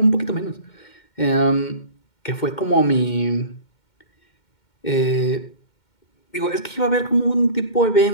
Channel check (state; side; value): late; right; 2.2 ms